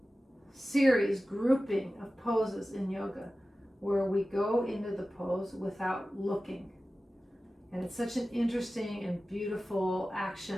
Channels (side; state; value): both; normal; correlation 0.95